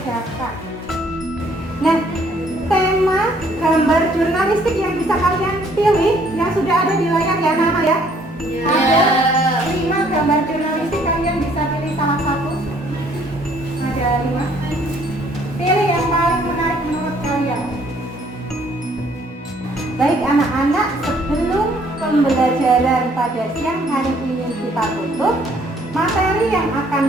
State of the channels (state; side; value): normal; both; correlation 0.63